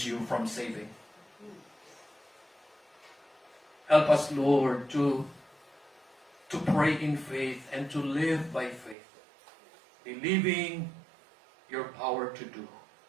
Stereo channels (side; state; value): left; drops out; at 9.0 s